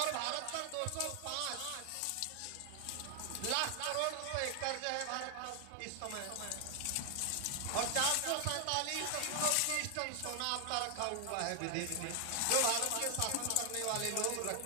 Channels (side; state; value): both; different; correlation 0.00